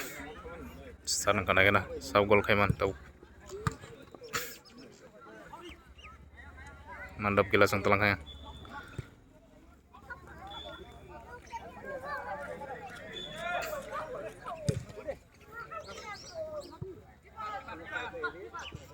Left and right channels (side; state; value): both; identical; correlation 1.00